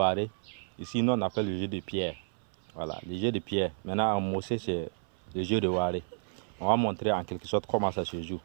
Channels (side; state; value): left; silent; 57 dB below the other